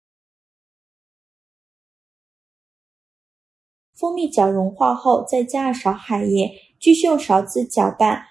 蜂蜜搅融化后，再加2勺海盐，继续用勺子搅拌，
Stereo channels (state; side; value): quieter; left; 4.6 dB